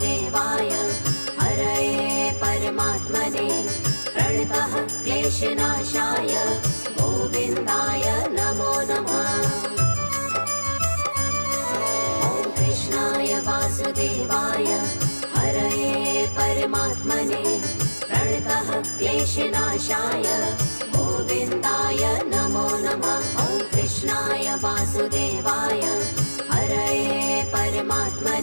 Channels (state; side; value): inverted; both; correlation -1.00